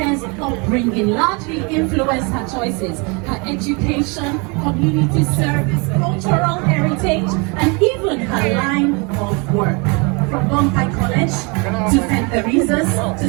upbringing largely influenced her choices, her education, community service, cultural heritage, and even her line of work. From Bombay College to St. Teresa's, to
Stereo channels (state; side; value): quieter; left; 30.9 dB